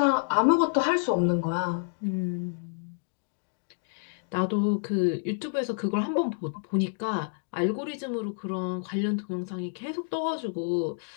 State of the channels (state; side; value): silent; right; digital silence